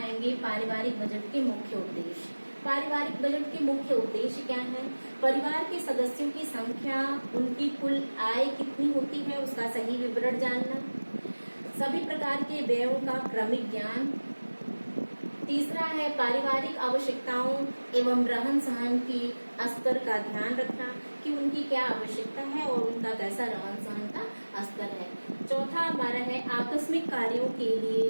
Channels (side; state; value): both; inverted; correlation -1.00